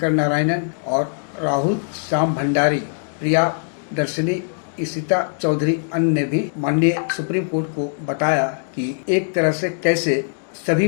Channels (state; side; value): silent; right; digital silence